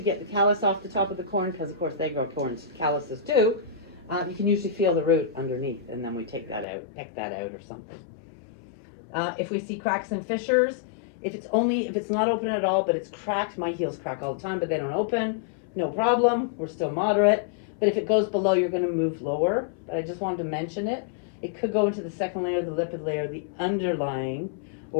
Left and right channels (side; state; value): right; drops out; at 6.7 s